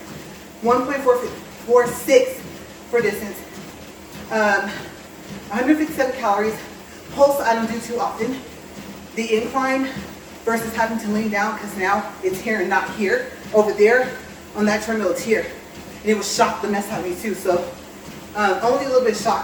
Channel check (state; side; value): identical; both; correlation 1.00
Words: 1.446 for distance, 157 calories. Pulse I don't do too often. The incline versus having to lean down because now it's here and not here. over there on that treadmill, it's here. And it was shocked the mess out of me too. So only a little bit